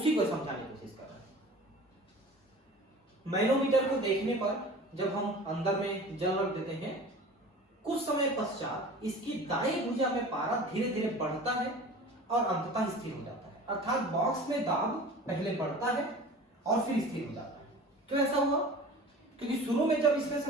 को समझाने की कोशिश कर रहे हैं। मैनोमीटर को देखने पर जब हम अंदर में जल रख देते हैं, कुछ समय पश्चात इसकी दाईं भुजा में पारा धीरे धीरे बढ़ता है और अंततः स्थिर हो जाता है। अर्थात बॉक्स में दाब पहले बढ़ता है और फिर स्थिर हो जाता है। क्यों ऐसा हुआ? क्योंकि शुरू में जब इसमें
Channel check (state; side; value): normal; both; correlation 0.40